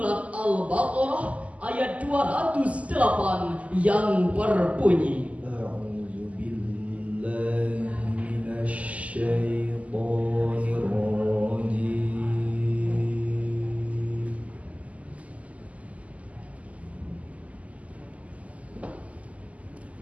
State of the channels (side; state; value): left; late; 0.069 ms